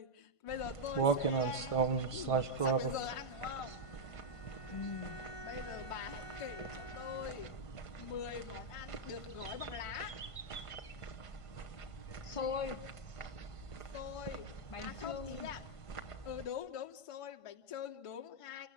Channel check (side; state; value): right; late; 1.5 ms